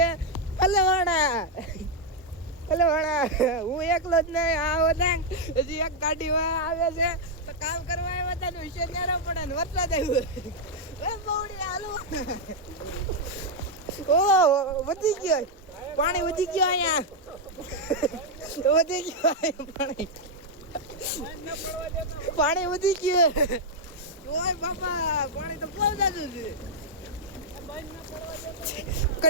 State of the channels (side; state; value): both; normal; correlation -0.02